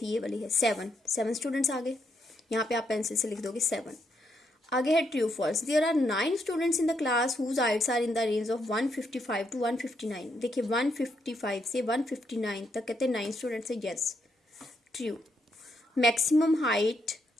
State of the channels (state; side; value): normal; both; correlation 0.77